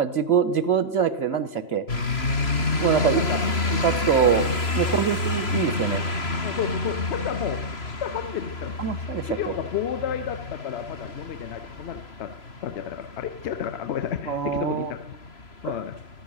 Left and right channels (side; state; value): right; late; 3.0 ms